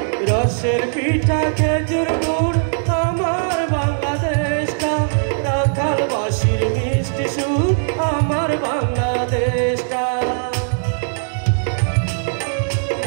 রসের পিঠা খেজুর গুড় আমার বাংলাদেশটা, রাখালবাসীর মিষ্টি সুর আমার বাংলাদেশটা,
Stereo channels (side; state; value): left; silent; 61 dB below the other